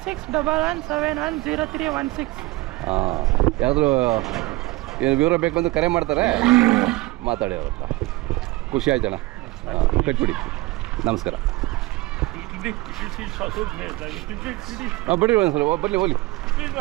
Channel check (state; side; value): quieter; left; 20.8 dB